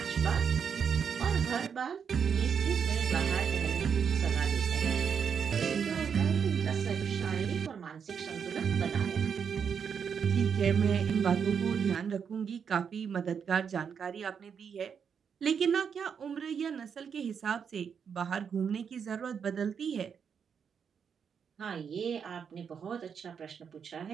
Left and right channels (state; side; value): quieter; left; 7.0 dB